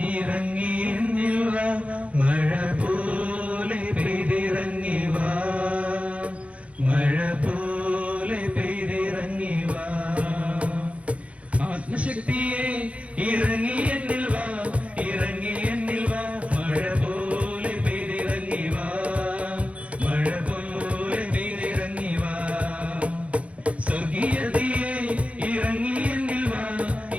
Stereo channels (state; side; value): late; left; 0.064 ms